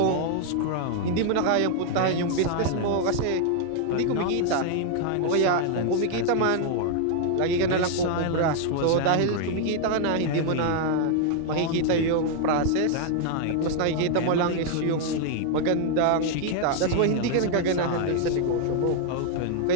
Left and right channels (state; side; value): different; both; correlation 0.00